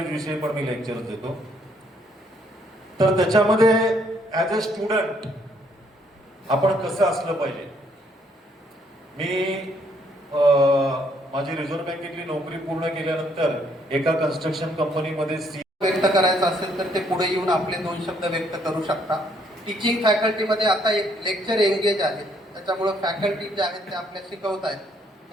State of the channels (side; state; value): both; normal; correlation 0.68